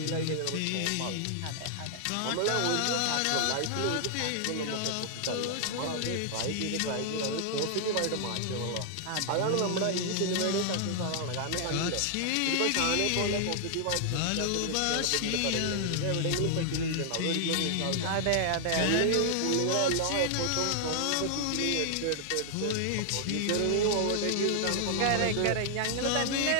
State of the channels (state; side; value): different; both; correlation 0.00